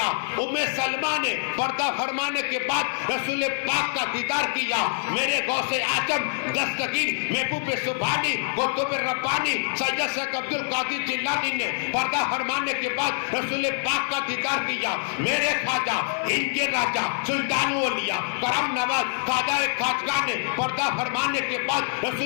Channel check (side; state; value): right; silent; digital silence